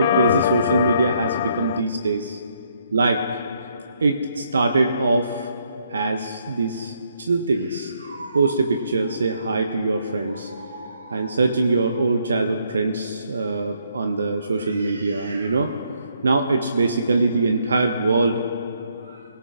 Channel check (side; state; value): both; inverted; correlation -0.72